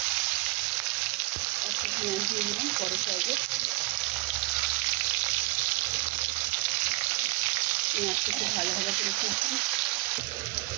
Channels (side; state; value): left; quieter; 20.9 dB